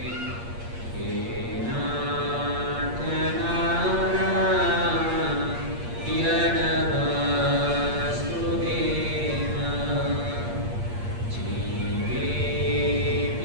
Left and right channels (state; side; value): late; left; 8.5 ms